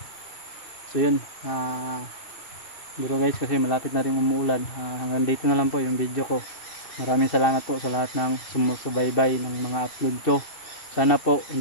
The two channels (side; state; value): right; late; 2.7 ms